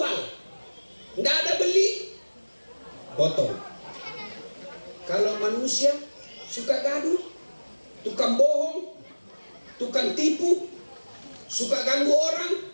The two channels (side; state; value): both; inverted; correlation -1.00